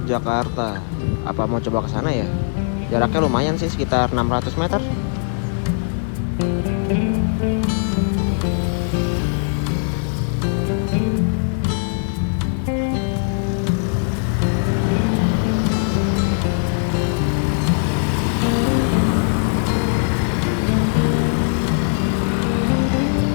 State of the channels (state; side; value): silent; right; digital silence